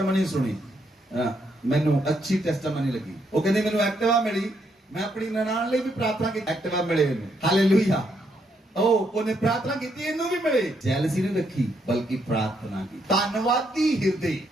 ਸੁਣੀ, ਮੈਨੂੰ ਅੱਛੀ ਟੈਸਟਮਨੀ ਲੱਗੀ। ਉਹ ਕਹਿੰਦੇ ਮੈਨੂੰ ਐਕਟਿਵਾ ਮਿਲੀ, ਮੈਂ ਆਪਣੀ ਨਨਾਣ ਲਈ ਵੀ ਪ੍ਰਾਰਥਨਾ ਕੀਤੀ, ਐਕਟਿਵਾ ਮਿਲੇ ਇਹਨੂੰ। ਹਾਲੇਲੂਇਆ। ਉਹਨੇ ਪ੍ਰਾਰਥਨਾ ਕੀਤੀ ਇਹਨੂੰ ਵੀ ਮਿਲੇ। ਜੈਲਸੀ ਨਹੀਂ ਰੱਖੀ ਬਲਕਿ ਪ੍ਰਾਰਥਨਾ ਕੀਤੀ। ਧੰਨਵਾਦੀ ਹਿਰਦੇ,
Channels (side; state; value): both; normal; correlation 0.75